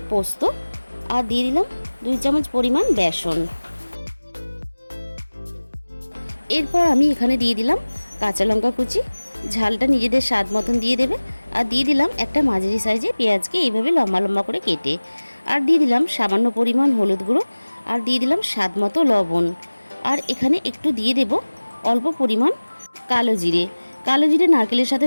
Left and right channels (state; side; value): inverted; both; correlation -1.00